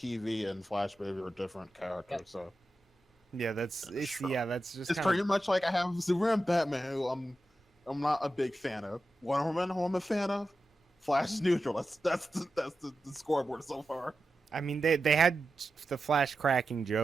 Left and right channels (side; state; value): both; normal; correlation 0.91